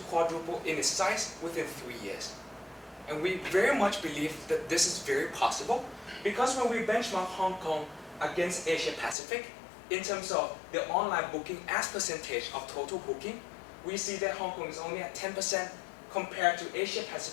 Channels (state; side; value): drops out; right; at 9.2 s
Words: quadruple in its size within 3 years. And we very much believe that this is very possible because when we benchmark Hong Kong against Asia Pacific, in terms of the online booking as percentage of total booking, we see that Hong Kong is only at 10% compared to Asia